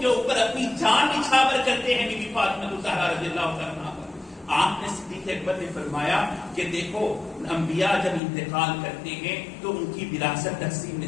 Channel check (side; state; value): right; drops out; at 8.2 s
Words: کے اوپر اپنی جان نچھاور کرتے ہیں بی بی فاطمہ الزہرا رضی اللہ تعالیٰ عنہا پر۔ آپ نے صدیق اکبر نے فرمایا کہ دیکھو، انبیاء جب انتقال کرتے ہیں تو ان کی وراثت تقسیم